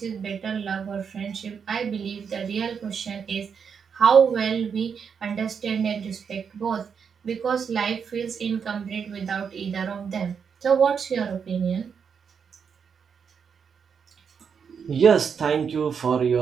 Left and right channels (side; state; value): left; quieter; 6.6 dB